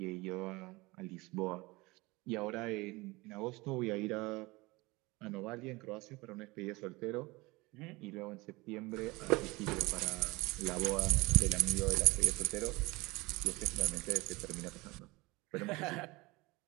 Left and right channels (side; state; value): left; quieter; 22.9 dB